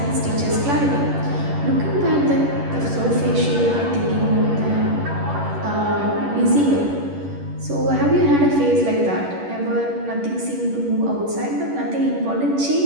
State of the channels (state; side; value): late; left; 11 ms